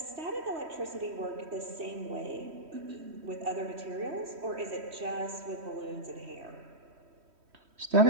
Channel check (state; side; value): late; left; 3.1 ms